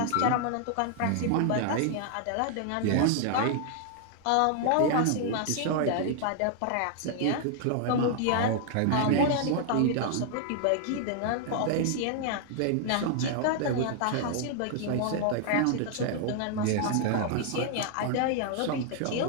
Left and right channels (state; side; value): different; both; correlation 0.00